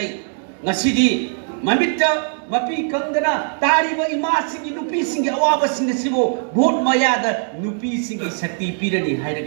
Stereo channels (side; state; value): left; silent; 61 dB below the other